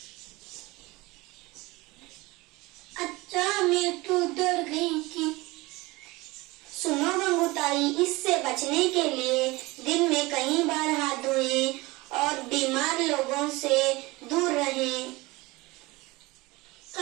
अच्छा मैं तो डर गई थी। सुनो गंगूताई, इससे बचने के लिए दिन में कई बार हाथ धोएं और बीमार लोगों से दूर रहें।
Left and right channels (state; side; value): quieter; left; 22.1 dB